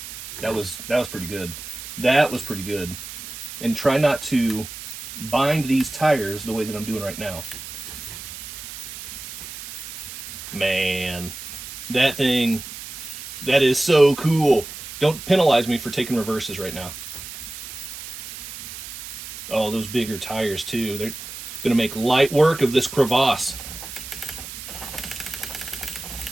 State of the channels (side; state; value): right; noise; hiss, 11 dB below the sound